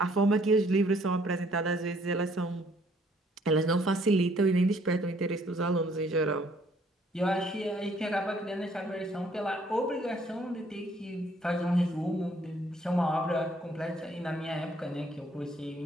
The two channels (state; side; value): normal; both; correlation 0.63